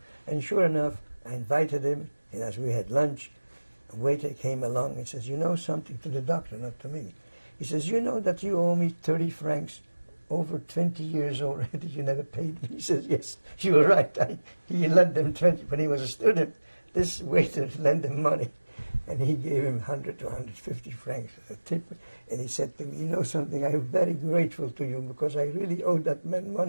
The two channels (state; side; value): inverted; both; correlation -1.00